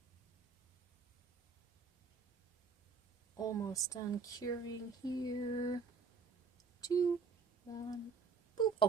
Almost done curing here. 2, 1, boop.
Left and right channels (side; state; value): left; quieter; 5.2 dB